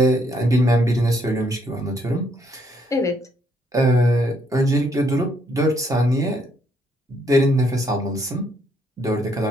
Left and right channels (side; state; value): both; normal; correlation 0.71